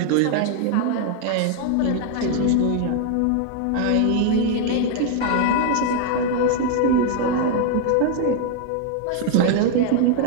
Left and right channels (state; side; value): different; both; correlation 0.00